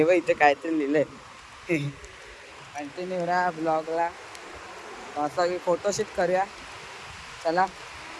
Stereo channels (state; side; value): identical; both; correlation 1.00